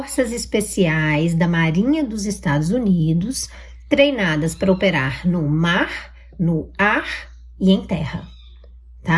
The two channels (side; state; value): both; identical; correlation 1.00